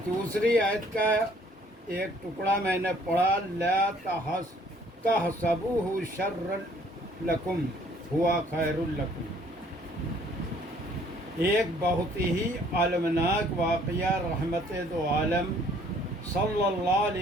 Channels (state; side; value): normal; both; correlation 0.60